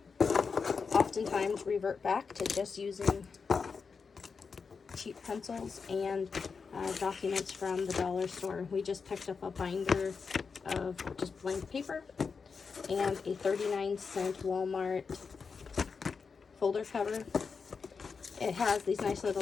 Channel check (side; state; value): right; quieter; 5.3 dB